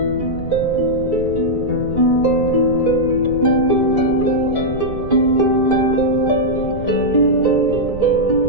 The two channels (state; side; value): noise; right; rumble, 11 dB below the sound